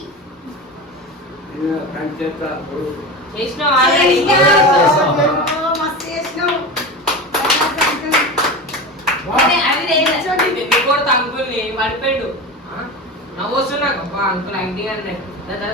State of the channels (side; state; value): both; normal; correlation 0.26